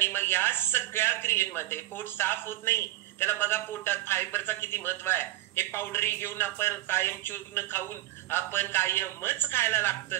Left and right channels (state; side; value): quieter; left; 16.0 dB